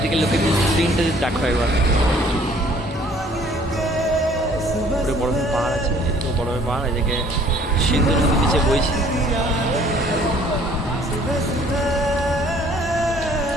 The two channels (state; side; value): normal; both; correlation 0.57